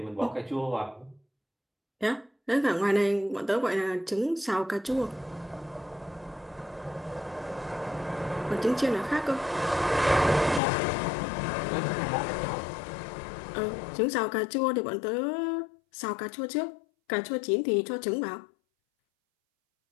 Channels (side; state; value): right; drops out; at 10.6 s